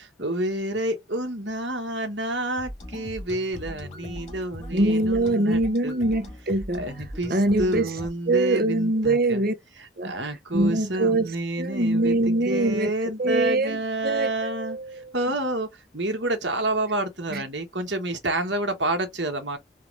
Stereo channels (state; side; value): normal; both; correlation 0.32